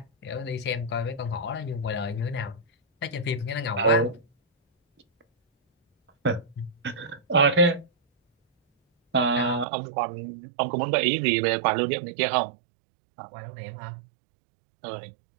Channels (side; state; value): left; drops out; at 9.7 s